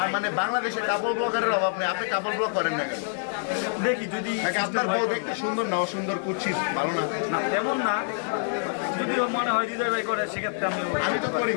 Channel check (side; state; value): right; silent; digital silence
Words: মানে বাংলাদেশে কাপল ব্লগারের অভাব নেই, আপনি কাপল ব্লগ করেন না কেন? দেখি যদি আপনার বউ দেখতে সুন্দর না অসুন্দর কুচ্ছিত ভালো না? না তেমন না, যদি মনে হয় হৃদয় ভাই করে সেক্ষেত্রে আমি তো করি